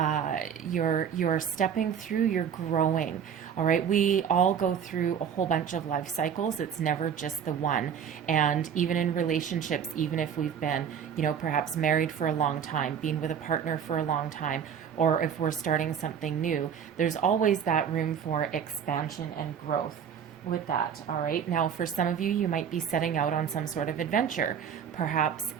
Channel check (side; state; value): left; quieter; 7.9 dB